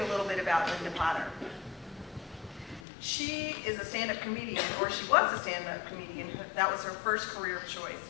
little bit about Linda Potter. She is a stand-up comedian, or she was a stand-up comedian. That was her first career choice.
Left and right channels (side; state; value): right; drops out; at 2.8 s